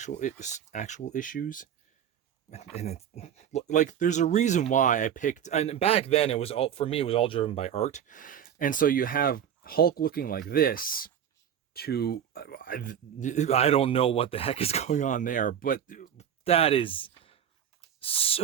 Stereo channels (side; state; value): left; quieter; 9.1 dB